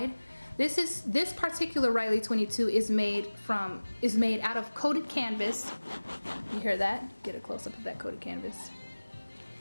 This particular Riley 22 is made out of coated canvas. You hear that? Get a close up of that coated canvas.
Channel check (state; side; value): inverted; both; correlation -1.00